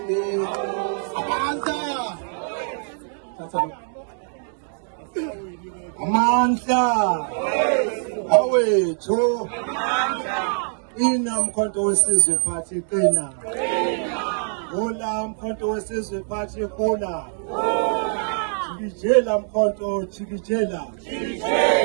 Amandla awethu inamkhonto wesizwe phathi qina. Hola mkhonto wesizwe phathi hola. Chikijela mkhonto chikijela.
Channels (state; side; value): silent; left; 63 dB below the other